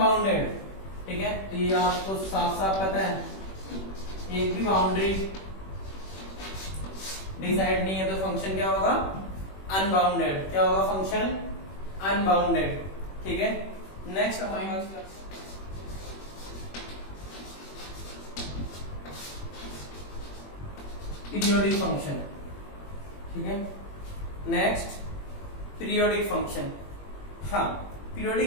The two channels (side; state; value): right; late; 21 ms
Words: ठीक है। तो ये आपको साफ साफ पता है, एक भी बाउंड्री डिसाइड नहीं है तो फंक्शन क्या होगा, अनबाउंडेड, क्या होगा, फंक्शन अनबाउंडेड, ठीक है। नेक्स्ट हमारे पीरियोडिक फंक्शन, ठीक है। नेक्स्ट पीरियोडिक फंक्शन, हाँ,